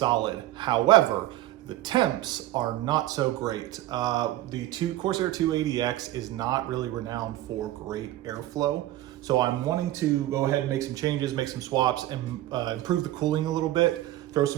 However, the temps are not so great. The Corsair 280X is not really renowned for great airflow. So I'm wanting to go ahead and make some changes, make some swaps, and improve the cooling a little bit, throw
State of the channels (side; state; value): left; quieter; 15.2 dB